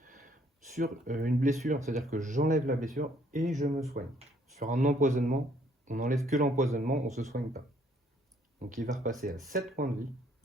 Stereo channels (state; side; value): normal; both; correlation 0.65